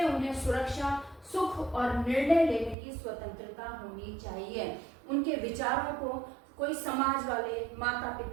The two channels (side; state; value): left; drops out; at 2.8 s